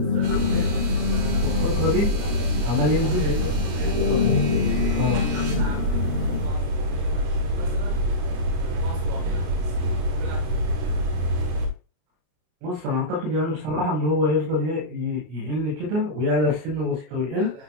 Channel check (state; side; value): late; left; 33 ms